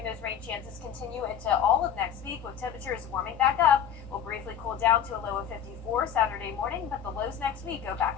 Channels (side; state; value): right; quieter; 8.6 dB